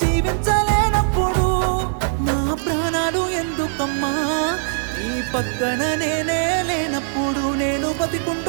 జీవించలేనప్పుడు, నా ప్రాణాలు ఎందుకమ్మా నీ పక్కన నేనే లేనప్పుడు, నేను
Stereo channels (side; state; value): left; silent; digital silence